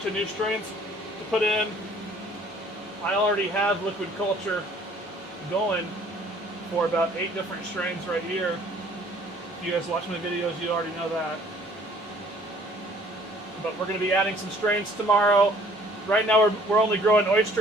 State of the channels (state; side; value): normal; both; correlation 0.57